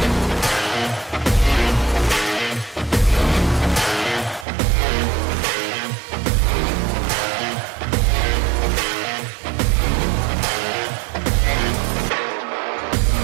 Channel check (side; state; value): left; drops out; at 4.5 s